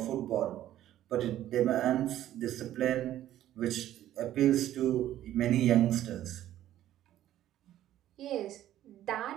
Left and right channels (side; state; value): left; quieter; 12.8 dB